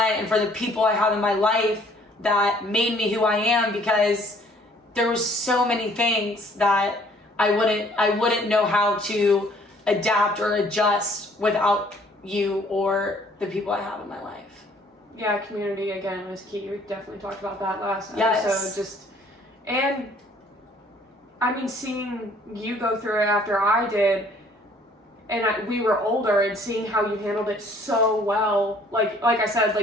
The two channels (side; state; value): both; normal; correlation 0.59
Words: and for the people I have in my life that made me who I am, because there was so many things that I wouldn't know how to adapt or adjust without you or the people I have in my life. Yeah, community again was key. We definitely talked about that last Yes. episode. And I mean, seeing you go through it after I did, and we were older, and seeing how you handled it so well. Like I said,